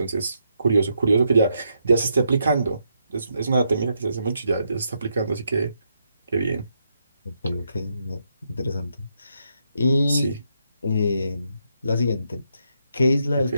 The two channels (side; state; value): both; inverted; correlation -0.79